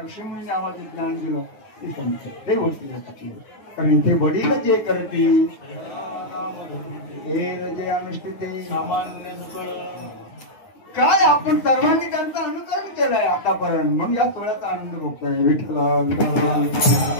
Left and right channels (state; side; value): late; right; 9.9 ms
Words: ऋषीमुनी आम्हाला ज्ञान दिलं ते संत ते वडील असतात. कारण इथे वडील जे करतील हे जे अनुष्ठित काय आपण सर्वांनी त्यांचं अनुकरण केलंय आतापर्यंत. म्हणून या सोहळ्याचा आनंद भोगतोय. विठ्ठल